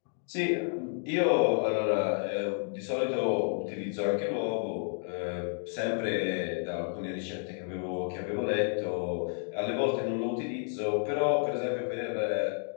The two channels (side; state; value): right; silent; 57 dB below the other